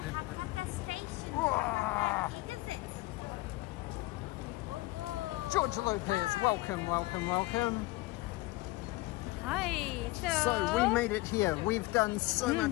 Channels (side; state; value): right; quieter; 20.5 dB